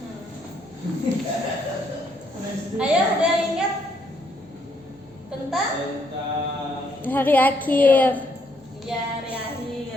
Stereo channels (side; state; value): left; noise; hum, 28 dB below the sound